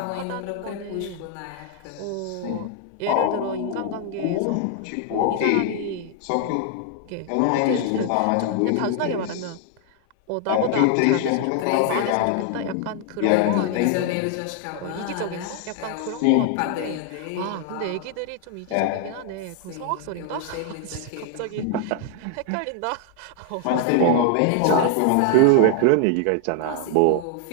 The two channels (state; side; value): different; both; correlation 0.00